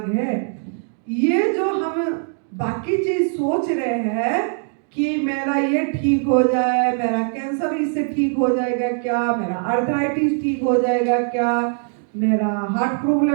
है। ये जो हम बाकी चीज सोच रहे हैं कि मेरा ये ठीक हो जाए, मेरा कैंसर इससे ठीक हो जाएगा क्या, मेरा आर्थराइटिस ठीक हो जाएगा क्या, मेरा हार्ट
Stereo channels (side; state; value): left; silent; 56 dB below the other